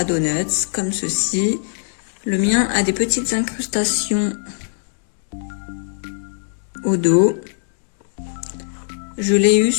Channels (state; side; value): silent; right; digital silence